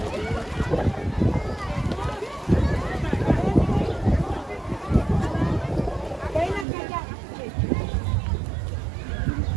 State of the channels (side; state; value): left; drops out; at 6.7 s